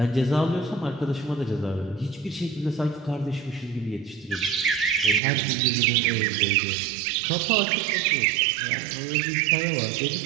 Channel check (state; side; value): drops out; left; at 5.2 s